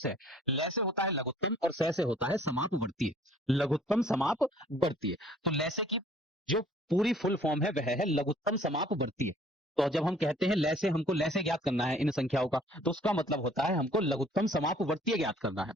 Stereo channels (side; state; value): both; normal; correlation 0.56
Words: लैसे होता है लघुत्तम और से होता है समापवर्तीय। लघुत्तम समापवर्तीय। तो लैसे की जो पूरी फुल फॉर्म है वह है लघुत्तम समापवर्तीय। तो जब हम कहते हैं लैसे, हमको लैसे ज्ञात करना है इन संख्याओं का, तो उसका मतलब होता है हमको लघुत्तम समापवर्तीय ज्ञात करना है।